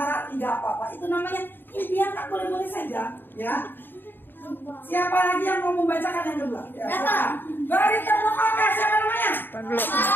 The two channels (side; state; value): right; late; 0.095 ms